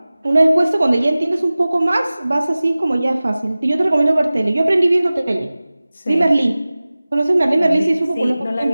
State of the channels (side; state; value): both; inverted; correlation -0.98